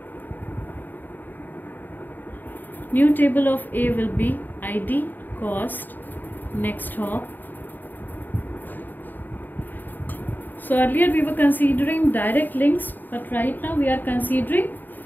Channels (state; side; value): late; right; 0.089 ms